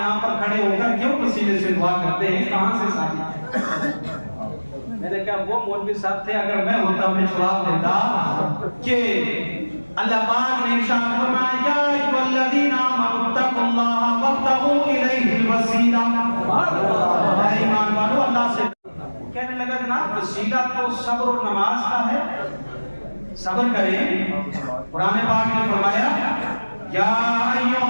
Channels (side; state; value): both; inverted; correlation -1.00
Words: پر کھڑے ہو کر کیوں پسینے سے دعا کرتے ہیں، کہاں سے ساتھی؟ میں نے کہا وہ مولوی صاحب تھے، اگر میں ہوتا میں جواب دیتا کہ اللہ پاک نے ارشاد فرمایا یا ایھا الذین آمنوا اتقوا اللہ وابتغوا الیہ الوسیلہ، اے ایمان والو اللہ سے کہنے لگا جناب وسیلہ تو صبر و نماز کا ہے، صبر کریں۔ قرآن پاک نے فرمایا یا ایھا